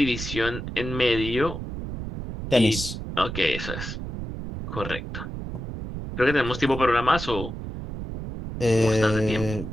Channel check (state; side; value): noise; right; rumble, 7 dB below the sound